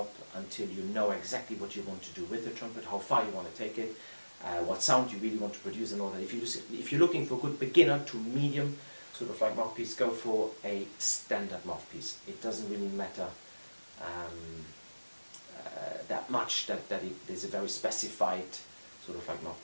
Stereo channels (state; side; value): inverted; both; correlation -1.00